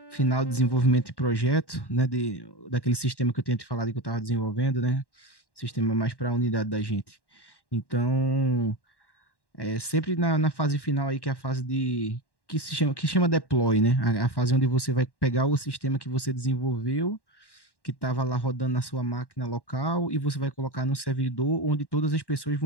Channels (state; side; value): late; right; 1.1 ms